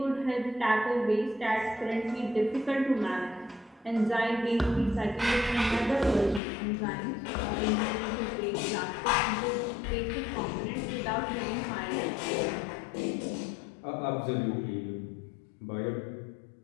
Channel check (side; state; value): right; drops out; at 6.4 s